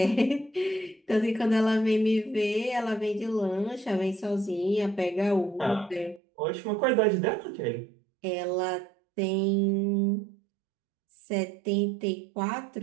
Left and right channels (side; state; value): left; drops out; at 6.2 s